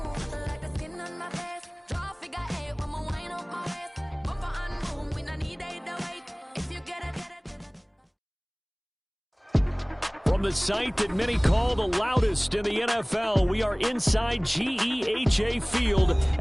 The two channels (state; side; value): identical; both; correlation 1.00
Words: like the skin on my face. Draw figure 8 when we wind up my waist. Bumper and boom, we no need either wait. If you get it. From the site that many call the loudest in the NFL, we are inside GEHA Field